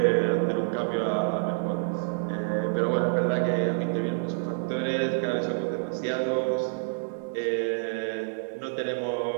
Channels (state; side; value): silent; left; digital silence